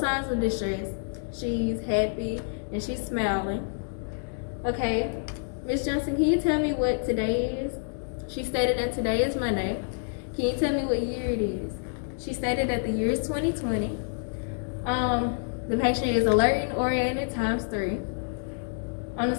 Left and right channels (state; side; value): silent; right; digital silence